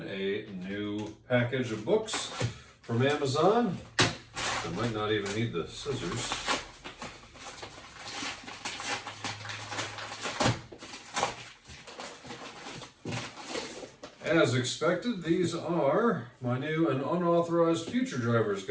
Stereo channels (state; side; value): identical; both; correlation 1.00